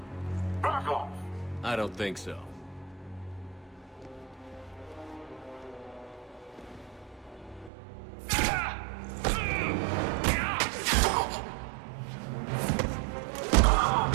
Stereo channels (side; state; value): left; drops out; at 7.7 s